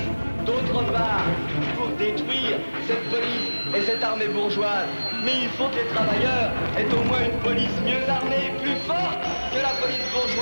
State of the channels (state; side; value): inverted; both; correlation -1.00